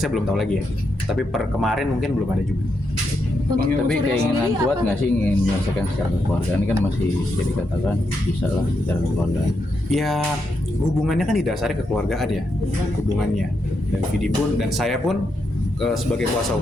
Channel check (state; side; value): late; right; 1.0 ms